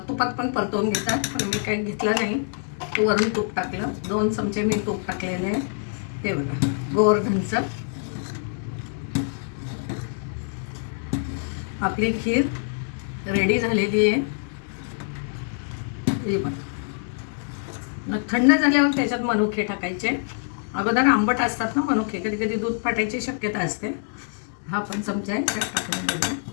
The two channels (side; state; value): right; silent; digital silence